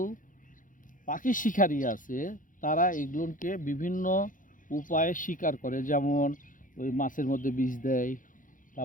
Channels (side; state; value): right; late; 0.38 ms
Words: পাখি শিকারী আছে, তারা এগুলোকে বিভিন্ন উপায়ে শিকার করে। যেমন ওই মাছের মধ্যে বিষ দেয়,